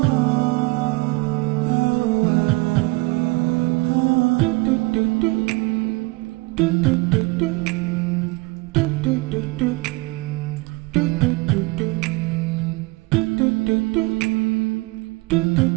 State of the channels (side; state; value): left; quieter; 24.4 dB